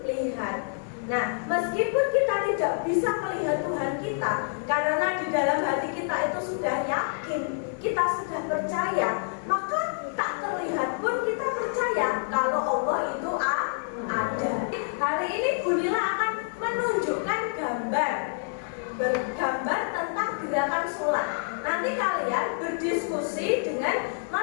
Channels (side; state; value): right; silent; digital silence